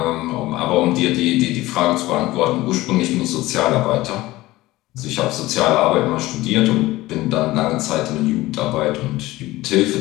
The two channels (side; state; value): right; quieter; 18.1 dB